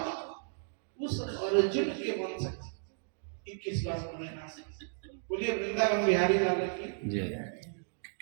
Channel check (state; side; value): silent; left; digital silence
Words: उस अर्जुन के वंश 21 बार उन्होंने नाश किया। बोलिए वृंदावन बिहारी लाल की।